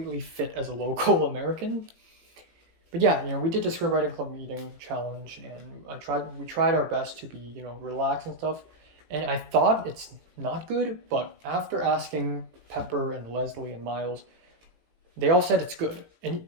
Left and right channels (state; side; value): late; left; 18 ms